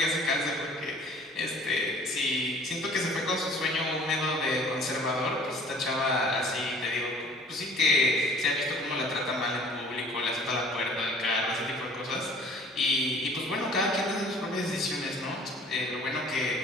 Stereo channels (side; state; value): both; normal; correlation 0.51